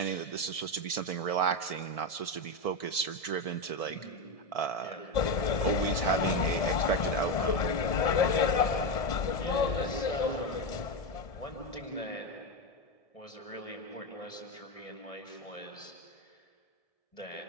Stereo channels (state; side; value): late; right; 1.7 ms